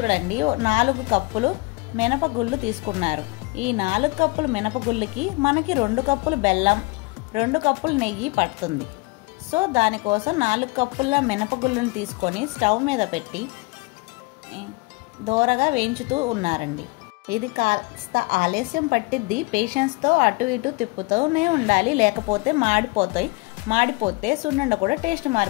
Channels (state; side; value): quieter; right; 26.6 dB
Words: 4 కప్పులు మినపగుళ్ళు తీసుకున్నారు. ఈ 4 కప్పులు మినపగుళ్ళకి మనకి 2 కప్పులు బెల్లం, 2 కప్పులు నెయ్యి పడుతుంది. సో దానికోసం 4 కప్పుల మినపగుళ్ళను తీసుకొని స్టవ్ మీద పెట్టి దోరగా వేయించుతూ ఉన్నారండి. ఇది కాస్త ఆలస్యం పట్టిద్ది. పేషెన్స్తో అటు ఇటు తిప్పుతూనే ఉండాలి, లేకపోతే మాడిపోతే సున్నుండ కూడా టేస్ట్